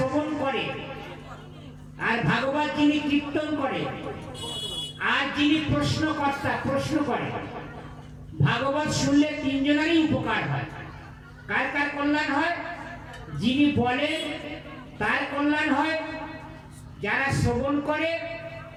করে আর ভাগবত যিনি কীর্তন করে আর যিনি প্রশ্নকর্তা প্রশ্ন করে, ভাগবত শুনলে তিনজনেরই উপকার হয়। কার কার কল্যাণ হয়? যিনি বলেন তার কল্যাণ হয়, যারা শ্রবণ করে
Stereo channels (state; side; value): identical; both; correlation 1.00